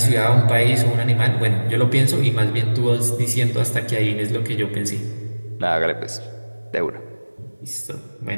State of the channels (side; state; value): both; inverted; correlation -1.00